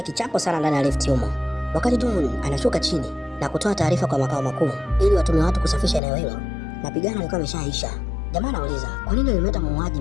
kichapo sana ndani ya lifti humo. Wakati Dun anashuka chini na kutoa taarifa kwa makao makuu ili watume watu kusafisha eneo hilo, mapigano yalikuwa yameshaisha. Jamaa anauliza kwa nini alimleta muuaji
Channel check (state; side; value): drops out; right; at 6.0 s